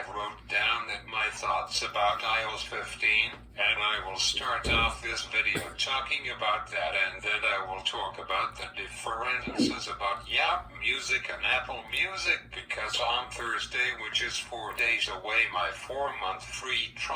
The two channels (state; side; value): identical; both; correlation 1.00